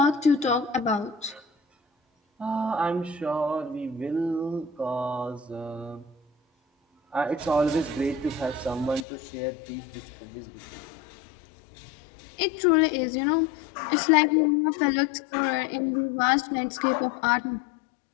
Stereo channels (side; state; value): right; drops out; at 9.1 s